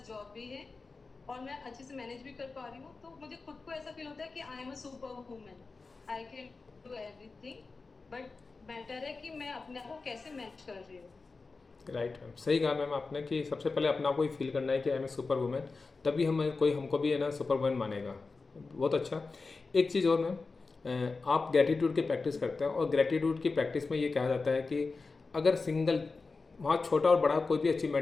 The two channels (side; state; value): right; quieter; 4.1 dB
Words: जॉब भी है और मैं अच्छे से मैनेज भी कर पा रही हूँ, तो मुझे खुद को ऐसा फील होता है कि I am a super woman, I can do everything. But matter है कि मैं अपने आप को कैसे मैनेज कर रही हूँ। राइट मैम, सही कहा मैम आपने कि सबसे पहले अपना को ही फील करना है कि I am a super women, तभी हम कोई हमको भी है ना सुपर वुमेन मानेगा। बहुत अच्छा। एक चीज़ और मैम, आप ग्रेटिट्यूड की प्रैक्टिस करते हैं, और ग्रेटिट्यूड की प्रैक्टिस में ये कहा जाता है कि अगर सिंगल, वहाँ छोटा और बड़ा कोई भी